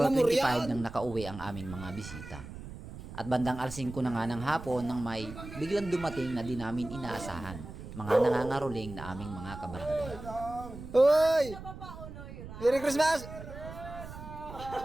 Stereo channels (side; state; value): right; noise; rumble, 12 dB below the sound